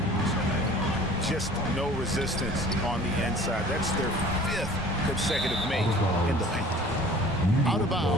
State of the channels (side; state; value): both; normal; correlation 0.47